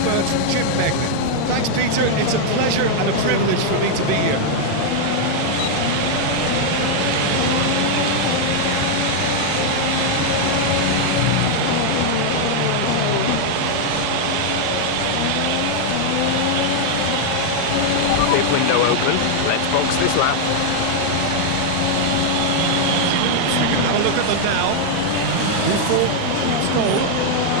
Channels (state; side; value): different; both; correlation 0.00